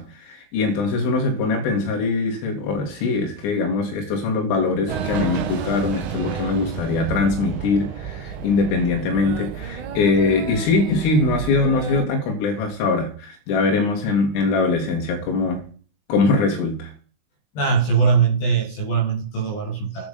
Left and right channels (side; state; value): right; late; 20 ms